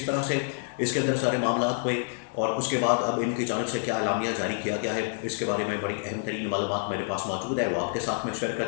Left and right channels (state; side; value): silent; right; digital silence